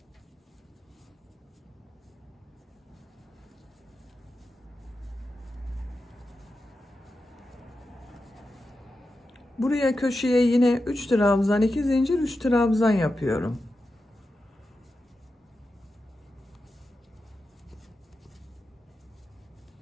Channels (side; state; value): both; normal; correlation 0.90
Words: Buraya köşeye yine 3 trabzan, 2 zincir, 3 trabzan yapıyorum.